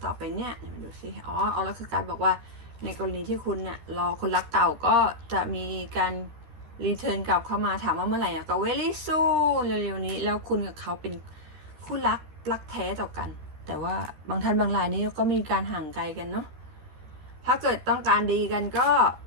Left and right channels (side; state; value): left; late; 13 ms